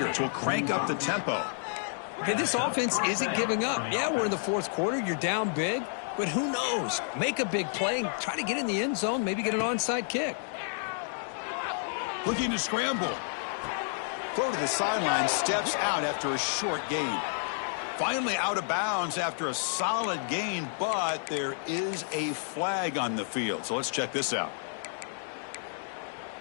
will crank up the tempo. Hey, this offense isn't giving up. Yeah, we're in the 4th quarter. You're down big, but who knows? Make a big play and try to get in the end zone, maybe get an onside kick. Looking to scramble. Throw to the sideline, steps out after a short gain. Finally out of bounds after a solid gain, but there is a flag on the field. So let's check this out.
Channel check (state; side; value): silent; right; digital silence